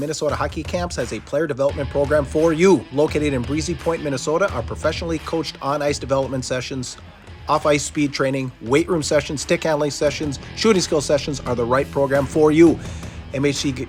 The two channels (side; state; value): both; identical; correlation 1.00